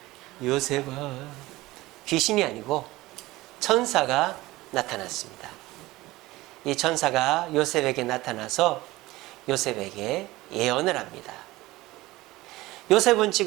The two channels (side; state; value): left; quieter; 18.9 dB